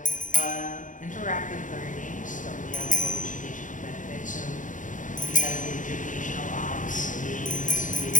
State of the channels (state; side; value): late; right; 0.37 ms